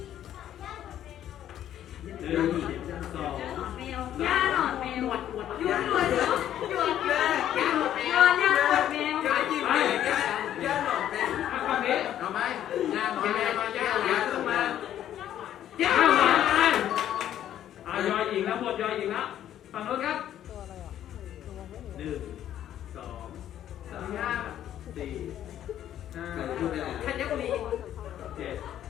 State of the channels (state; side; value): quieter; right; 11.3 dB